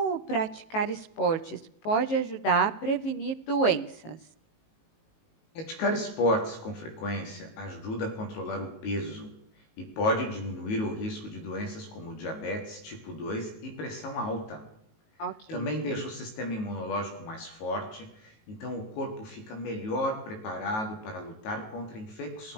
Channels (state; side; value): late; right; 19 ms